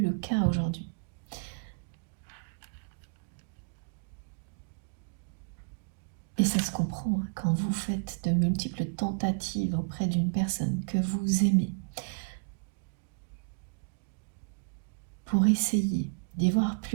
le cas aujourd'hui. Et ça se comprend hein, quand vous faites de multiples tentatives auprès d'une personne que vous aimez pour essayer d'y voir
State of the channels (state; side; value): quieter; left; 38.0 dB